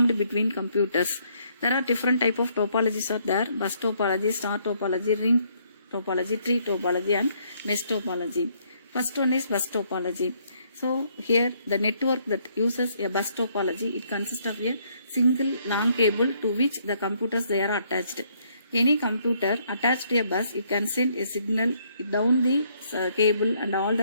between computers. There are different type of topologies are there: bus topology, star topology, ring topology, tree topology and mesh topology. First one is bus topology. So here the network that uses a bus topology, it consists of a single long cable to which the computers they are attached. Any computer attached to a bus, it can send a signal down the cable and all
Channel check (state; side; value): inverted; both; correlation -0.69